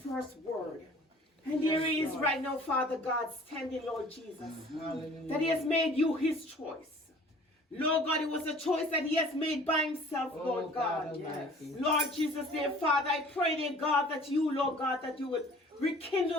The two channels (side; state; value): both; normal; correlation 0.50